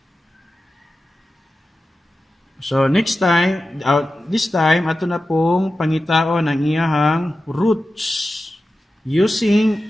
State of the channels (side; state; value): both; normal; correlation 0.93